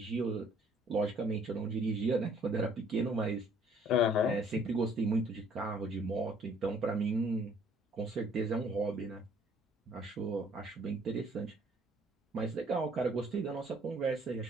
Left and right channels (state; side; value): normal; both; correlation 0.60